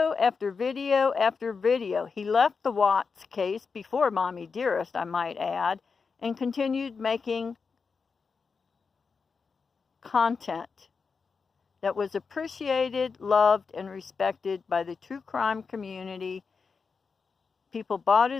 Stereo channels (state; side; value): quieter; right; 5.1 dB